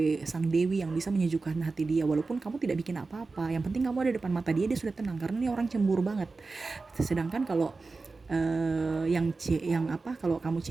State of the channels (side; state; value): left; quieter; 3.9 dB